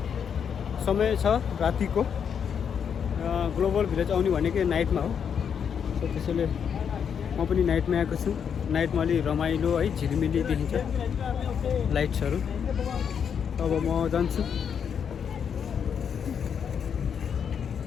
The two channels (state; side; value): quieter; right; 7.5 dB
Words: समय छ रातिको। ग्लोबल भिलेज आउने भनेकै नाइटमा हो। सो त्यसैले म पनि नाइटमा आएको छु। नाइटमा अलि रमाइलो है, झिलिमिली देखिन्छ लाइट्सहरू। अब म जान्छु।